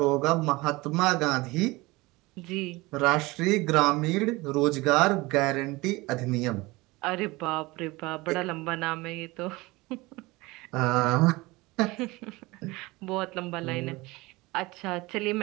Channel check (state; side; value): quieter; left; 22.0 dB